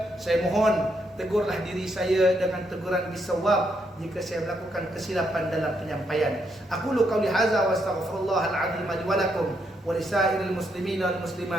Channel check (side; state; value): both; normal; correlation 0.77